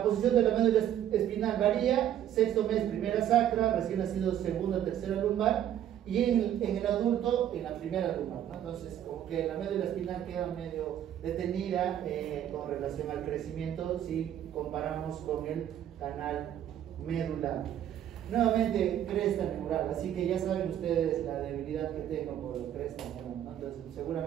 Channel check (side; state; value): left; quieter; 10.8 dB